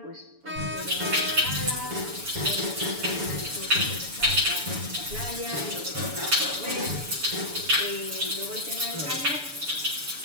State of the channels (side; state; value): left; late; 6.9 ms